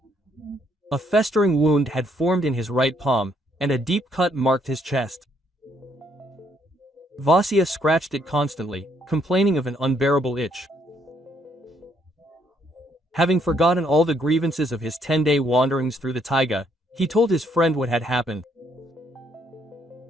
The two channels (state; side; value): normal; both; correlation 0.70